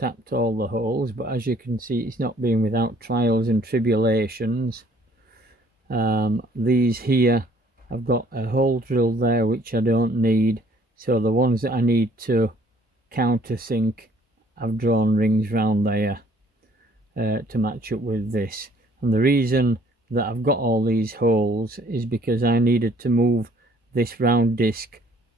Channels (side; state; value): both; normal; correlation 0.59